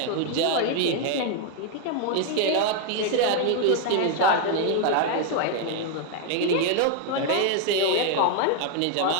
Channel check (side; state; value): both; different; correlation 0.00